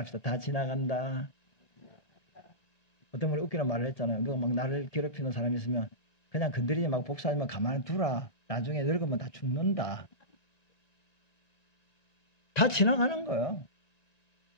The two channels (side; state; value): right; late; 1.2 ms